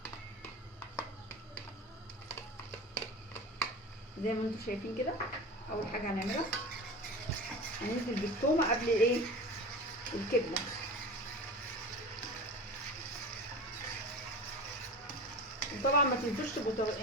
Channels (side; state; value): both; normal; correlation 0.32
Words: زي ما انتم شايفين كده. اول حاجه هنعملها هننزل بالتومه قبل ايه؟ الكبده. وطبعا ما تنسوش